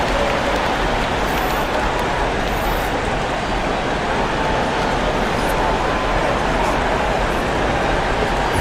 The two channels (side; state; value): both; identical; correlation 1.00